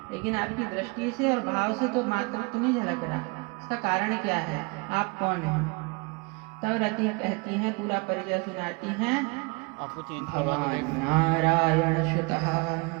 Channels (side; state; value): left; quieter; 29.1 dB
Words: लेकिन आपकी दृष्टि से और भाव से तो मातृत्व नहीं झलक रहा। इसका कारण क्या है? आप कौन हैं? तब रति कहती हैं, पूरा परिचय सुनाती हैं। भवान नारायण सुतः